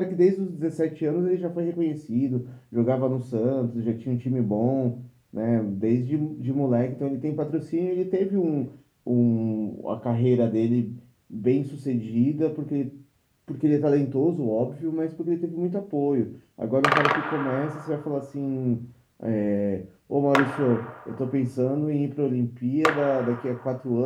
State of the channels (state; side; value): identical; both; correlation 1.00